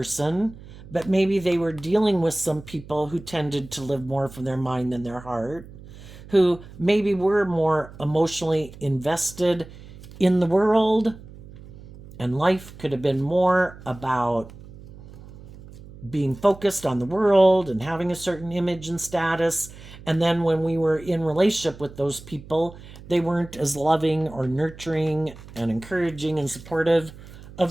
but maybe they were dealing with some people who tended to live more from their mind than their heart, who maybe were more emotionally invested in the world, and life could have been more about being focused on the world and having a certain image and status. And then when we were in relationship with those people, they weren't as loving or nurturing and encouraging and supportive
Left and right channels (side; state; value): right; noise; hum, 18 dB below the sound